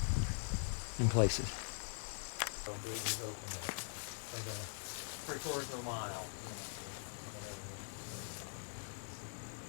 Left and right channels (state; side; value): silent; right; digital silence